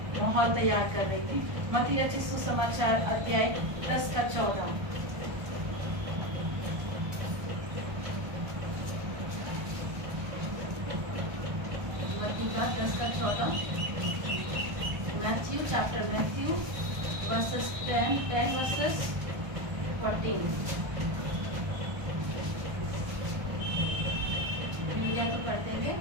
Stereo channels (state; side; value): late; left; 1.2 ms